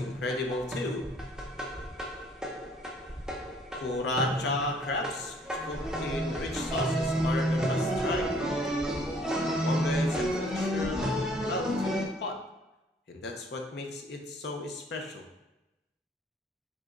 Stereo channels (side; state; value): both; normal; correlation 0.60